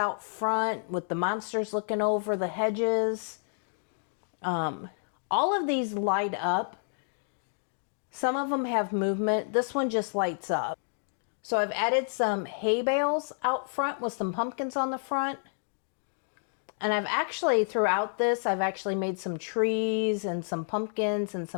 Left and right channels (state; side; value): silent; right; digital silence